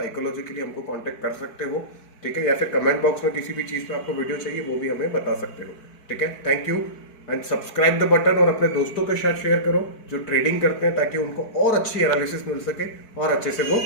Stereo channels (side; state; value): right; late; 4.6 ms